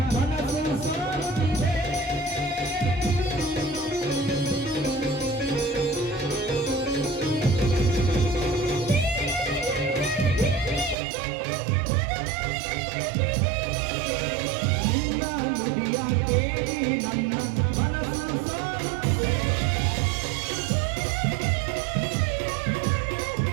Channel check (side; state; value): left; drops out; at 11.0 s